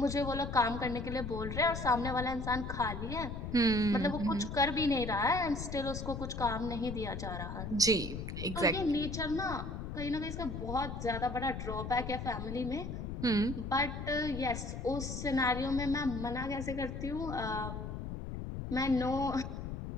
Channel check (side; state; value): left; noise; rumble, 6 dB below the sound